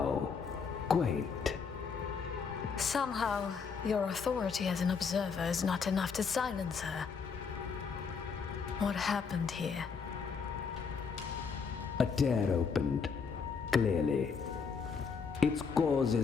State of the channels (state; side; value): quieter; right; 5.7 dB